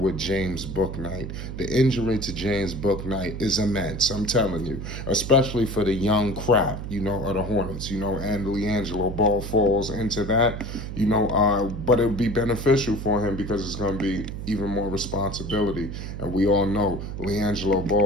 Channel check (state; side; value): noise; right; hum, 7 dB below the sound